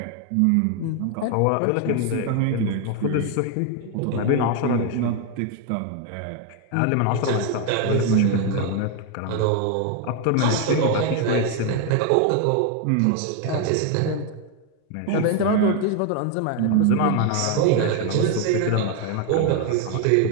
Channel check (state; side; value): different; both; correlation 0.01